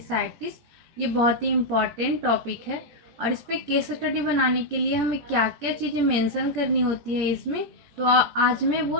ये बहुत ही इम्पॉर्टेंट टॉपिक है और इस पे केस स्टडी बनाने के लिए हमें क्या क्या चीज़ें मेंशन करनी होती है इसमें, तो आज मैं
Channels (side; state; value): left; late; 17 ms